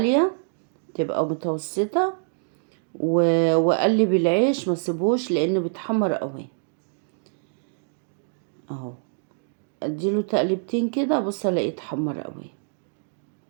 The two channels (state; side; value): silent; left; digital silence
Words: تبقى متوسطة، وأقلب العيش ما سيبوش لأنه بيتحمر قوي. اهو. اديله تقلبتين كده، بص الاقيه اتحمر قوي.